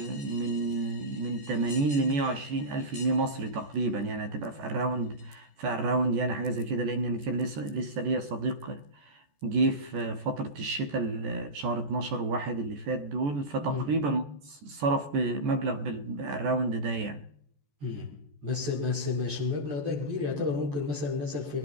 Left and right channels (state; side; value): late; left; 14 ms